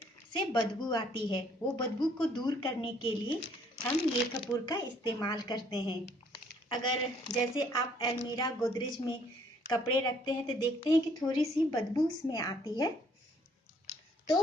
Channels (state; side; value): normal; both; correlation 0.64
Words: से बदबू आती है। वो बदबू को दूर करने के लिए हम ये कपूर का इस्तेमाल करते हैं। अगर जैसे आप अलमीरा, गोदरेज में कपड़े रखते हैं तो देखते हैं कि थोड़ी सी बदबू उसमें आती है,